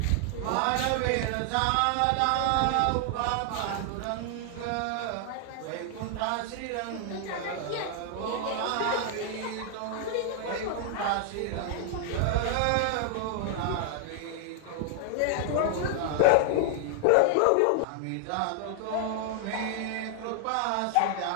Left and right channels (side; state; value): both; different; correlation 0.00